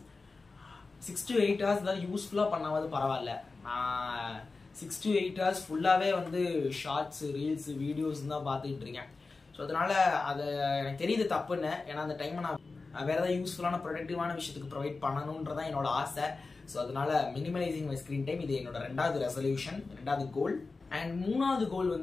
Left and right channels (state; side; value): quieter; right; 3.9 dB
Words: 6 to 8 hours தான் யூஸ்ஃபுல்லா பண்ணாவது பரவாயில்ல. நான் 6 to 8 hours ஃபுல்லாவே ஷார்ட்ஸ், ரீல்ஸ், வீடியோஸ் தான் பார்த்துக்கிட்டு இருக்கேன். ஸோ அதனால அது எனக்கு தெரியுது தப்புன்னு. ஏன்னா அந்த டைமை நான் வேற ஏதாவது யூஸ்ஃபுல்லான ப்ரொடக்டிவான விஷயத்துக்கு ப்ரொவைட் பண்ணணுன்றதான் என்னோட ஆசை. ஸோ அதனால மினிமலைசிங் மை ஸ்கிரீன் டைம் இது என்னோட 2வது ரெசல்யூஷன், 2வது கோல். அண்ட் 3வது கோல்